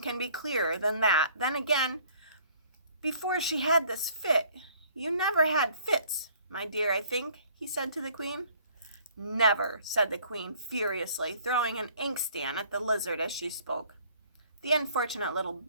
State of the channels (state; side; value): inverted; both; correlation -0.57